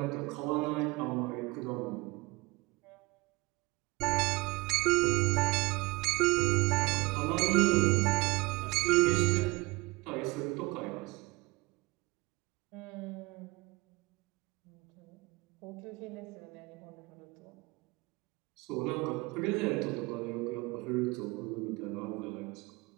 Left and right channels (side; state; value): left; quieter; 23.2 dB